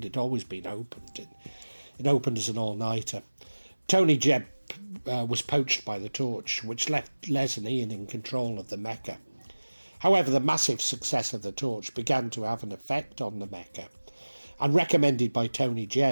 had always been opened. It opened as an all-nighter. Tony Jebb was poached by the Torch, which left Les and Ian in control of the Mecca. However, the massive success of the Torch began to have an effect on the Mecca, and recommended by Tony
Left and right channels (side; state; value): both; inverted; correlation -1.00